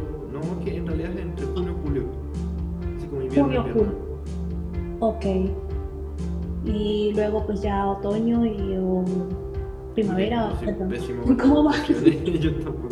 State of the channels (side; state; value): both; identical; correlation 1.00